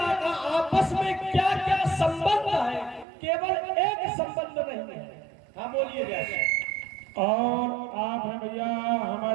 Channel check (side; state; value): left; drops out; at 3.1 s